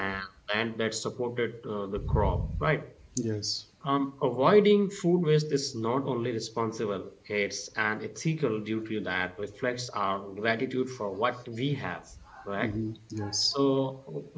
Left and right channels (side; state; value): both; identical; correlation 1.00